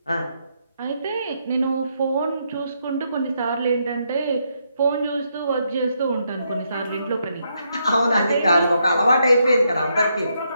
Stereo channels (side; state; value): both; inverted; correlation -0.78